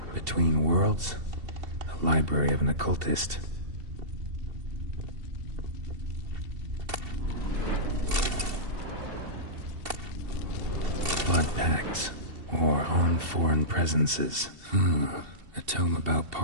Between Worlds. The Library of an Occultist. Blood Pacts. Or On Foreign Presences. A tome about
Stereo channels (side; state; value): left; late; 2.7 ms